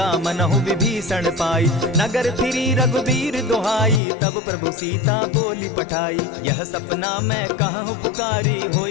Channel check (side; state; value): right; drops out; at 4.0 s